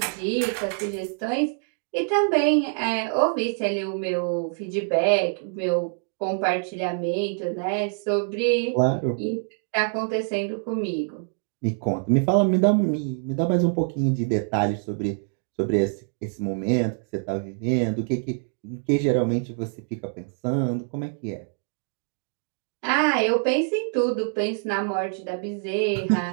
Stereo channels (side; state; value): left; silent; 61 dB below the other